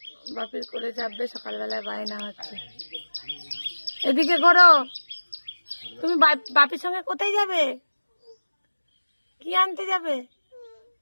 বাপির করে যাবে, সকালবেলায় বায়না হচ্ছে। এদিকে করো। তুমি বাপির সঙ্গে কোথায় যাবে? কি আনতে যাবে?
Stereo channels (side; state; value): both; inverted; correlation -1.00